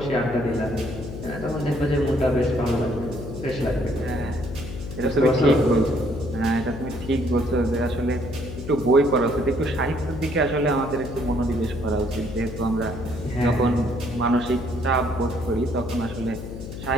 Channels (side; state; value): left; noise; hum, 9 dB below the sound